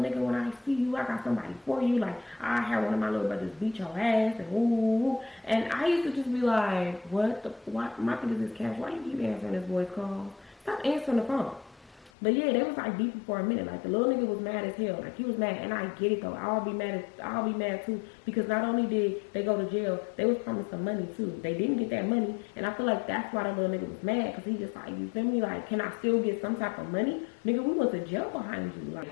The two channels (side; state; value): right; drops out; at 12.1 s